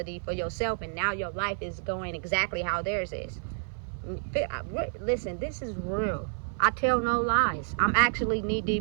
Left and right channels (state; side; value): silent; left; 58 dB below the other